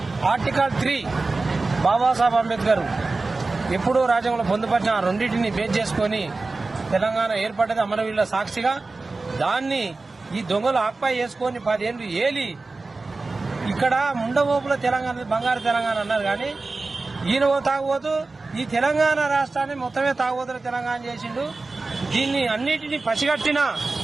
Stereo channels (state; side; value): quieter; left; 3.6 dB